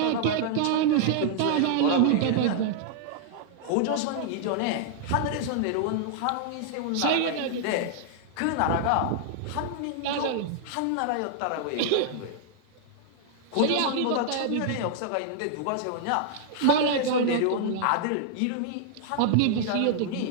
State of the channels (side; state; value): both; different; correlation -0.01